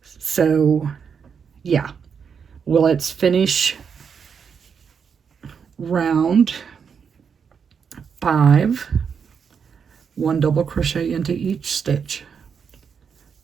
So yeah, well, let's finish round 5, 1 double crochet into each stitch,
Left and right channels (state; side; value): quieter; left; 6.6 dB